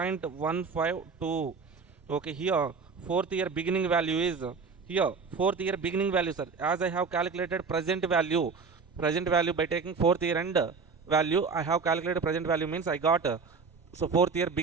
Okay, here fourth year beginning value is here fourth year beginning value, sir. As I have calculated present value by taking fourth year end value, I have calculated present value means I got so fourth year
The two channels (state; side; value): quieter; left; 5.0 dB